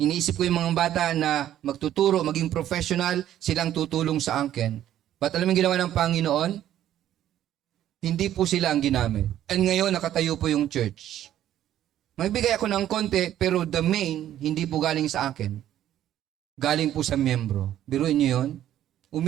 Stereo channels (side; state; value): left; quieter; 11.8 dB